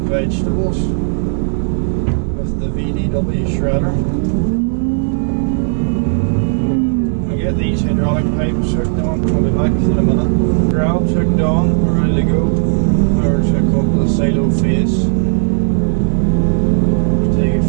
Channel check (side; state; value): left; silent; digital silence